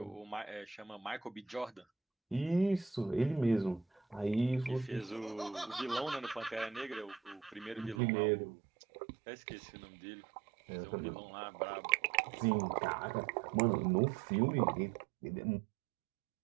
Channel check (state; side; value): drops out; left; at 8.0 s